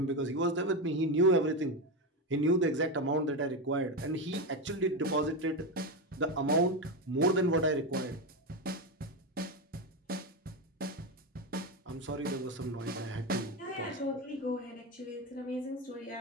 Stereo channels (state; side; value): normal; both; correlation 0.13